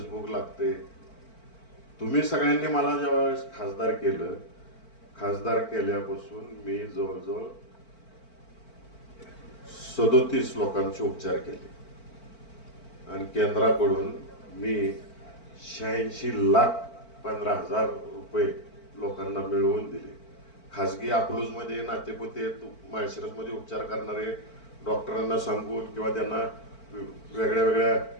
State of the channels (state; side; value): late; right; 4.5 ms